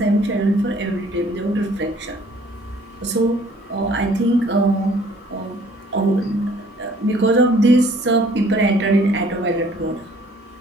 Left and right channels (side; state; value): both; normal; correlation 0.58